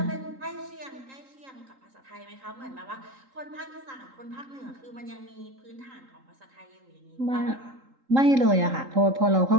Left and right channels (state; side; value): late; left; 3.8 ms